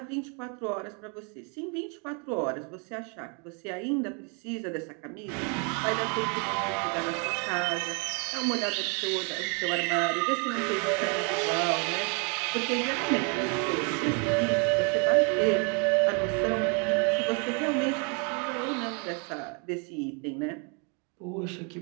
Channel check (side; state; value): left; quieter; 36.1 dB